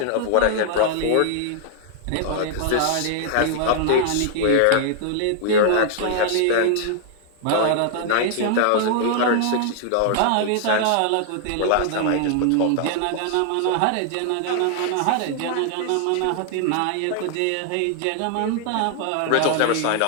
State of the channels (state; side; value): different; both; correlation -0.01